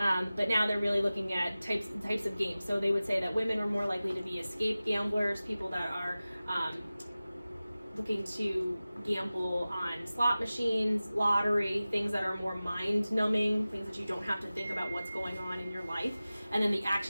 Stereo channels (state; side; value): inverted; both; correlation -0.96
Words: but now they're really looking at types of games. So they would say that women are more likely to be escape gamblers, people that are looking to gamble on slot machines, lottery, things that are more mind-numbing, things that you don't have to think about what's going on in your life. And then the